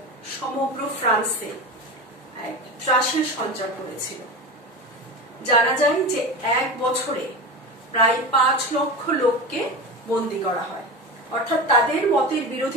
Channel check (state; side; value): normal; both; correlation 0.26